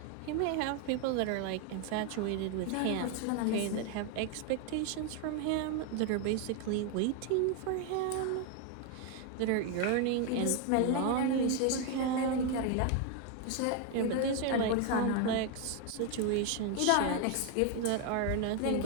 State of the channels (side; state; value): both; different; correlation 0.01